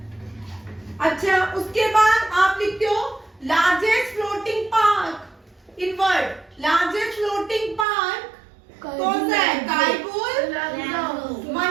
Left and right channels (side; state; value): left; drops out; at 7.9 s